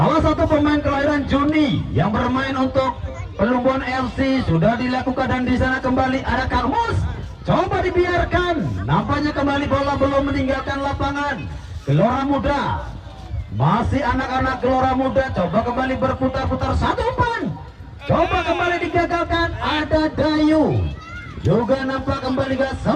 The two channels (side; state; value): both; identical; correlation 1.00